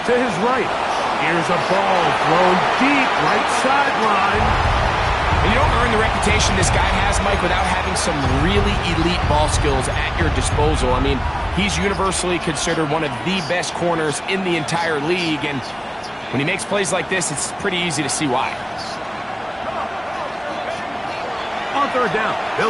to his right. Here's a ball thrown deep right sideline. And you don't earn the reputation this guy has, Mike, without having some really elite ball skills at your disposal. I mean, he's universally considered one of the best corners in the entire league, and when he makes plays like this, it's pretty easy to see why. On third down,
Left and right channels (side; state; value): both; identical; correlation 1.00